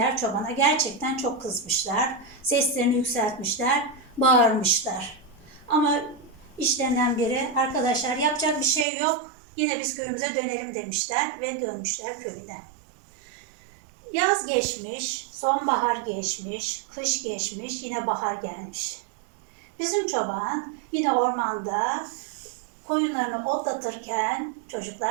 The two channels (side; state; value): left; drops out; at 8.8 s